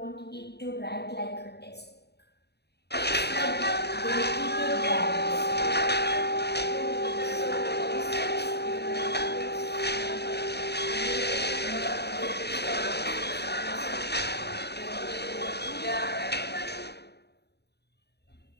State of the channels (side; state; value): right; late; 0.48 ms